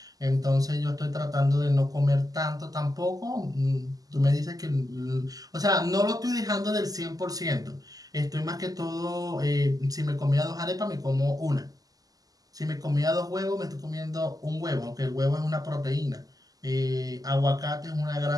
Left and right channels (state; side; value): late; left; 0.17 ms